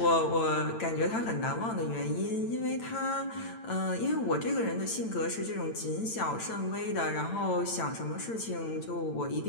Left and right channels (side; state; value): right; late; 8.9 ms